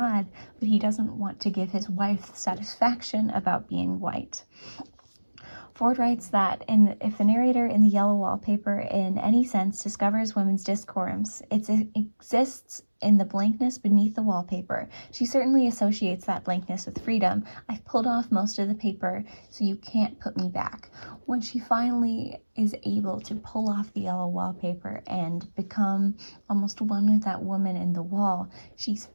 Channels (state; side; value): inverted; both; correlation -1.00